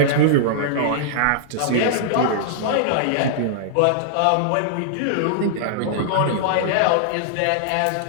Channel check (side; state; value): both; different; correlation -0.01